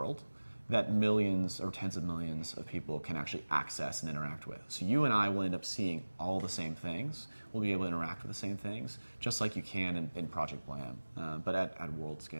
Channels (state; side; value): inverted; both; correlation -1.00